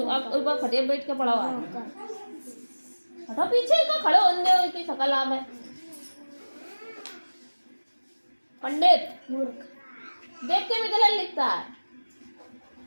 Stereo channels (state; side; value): inverted; both; correlation -1.00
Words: खटिया बैठ के पड़ा हुआ है। हटो पीछे का खड़े होंगे की शकल आम है। पंडित मूर्ख देख के भी गलत लिखता है।